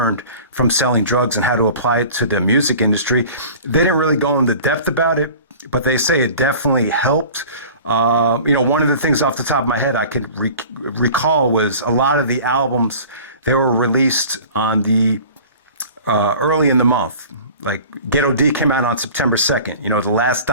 from selling drugs and how to apply it to the music industry, they didn't really go into depth about it, but they say it definitely helped. One of the things off the top of my head I could recall was a lot of the albums, they were released on the early in the month. Like Ghetto D came out on September 2nd. The Last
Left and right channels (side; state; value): both; inverted; correlation -0.42